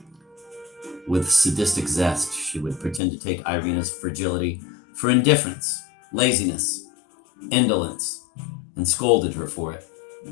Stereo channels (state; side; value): drops out; right; at 3.0 s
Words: With sadistic zest, she would pretend to take Irina's fragility for indifference, laziness, indolence, and scolded her for it.